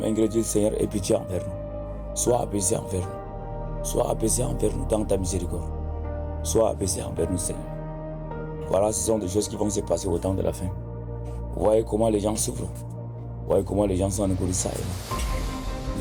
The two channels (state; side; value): identical; both; correlation 1.00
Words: ingrédients, Seigneur, aie pitié envers nous. Sois apaisé envers nous. Sois apaisé envers nous dans ta miséricorde. Sois apaisé envers nous, Seigneur. Voilà, ce sont des choses qui vont se passer au temps de la fin. Vous voyez comment les gens souffrent. Vous voyez comment les gens sont encourus ça.